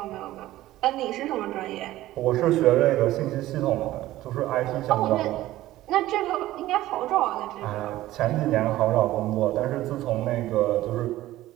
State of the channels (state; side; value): quieter; left; 15.6 dB